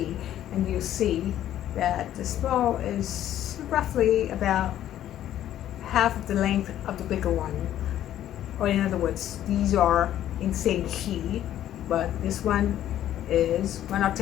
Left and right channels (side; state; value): right; quieter; 11.9 dB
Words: and you see that the small is roughly about half of the length of the bigger one. Or in other words, these are in the same key, but this one is one